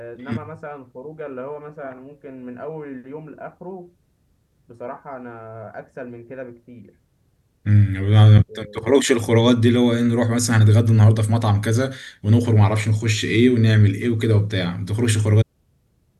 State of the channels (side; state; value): both; identical; correlation 1.00